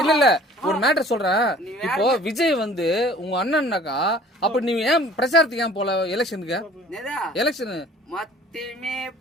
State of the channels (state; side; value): normal; both; correlation 0.50